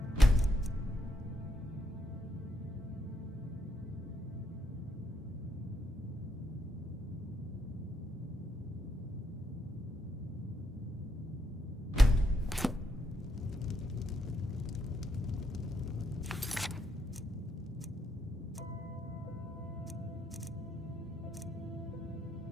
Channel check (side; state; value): both; normal; correlation 0.77